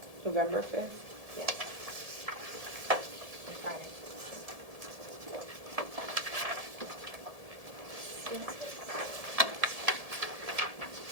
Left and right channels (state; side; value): late; left; 1.7 ms